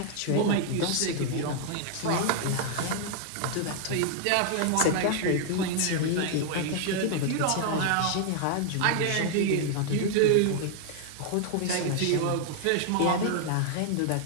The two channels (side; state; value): both; different; correlation 0.00